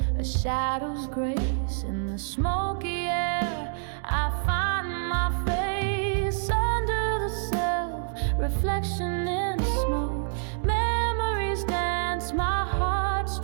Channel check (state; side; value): silent; left; digital silence